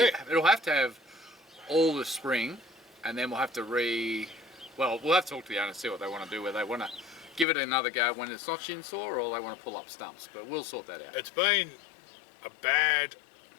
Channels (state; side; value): drops out; right; at 7.5 s